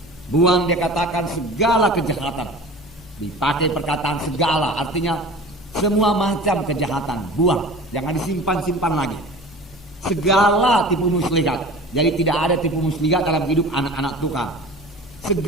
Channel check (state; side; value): normal; both; correlation 0.38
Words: Buang, dia katakan segala kejahatan. Dipakai perkataan segala, artinya semua macam kejahatan. Buang, jangan disimpan-simpan lagi. Segala tipu muslihat. Jadi tidak ada tipu muslihat dalam hidup anak-anak Tuhan.